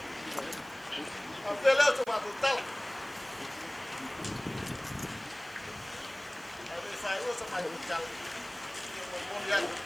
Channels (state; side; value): noise; right; hiss, 23 dB below the sound